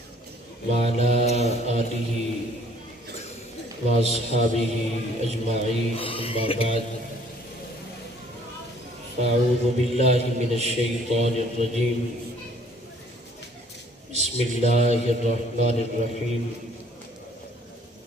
وعلى آله وأصحابه أجمعين أما بعد فأعوذ بالله من الشيطان الرجيم بسم الله الرحمن الرحيم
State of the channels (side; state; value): both; normal; correlation 0.59